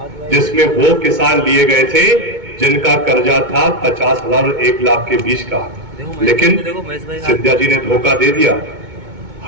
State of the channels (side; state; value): left; late; 2.2 ms